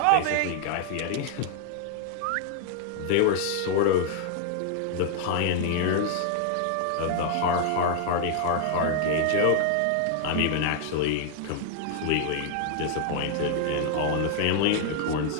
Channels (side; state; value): both; different; correlation 0.00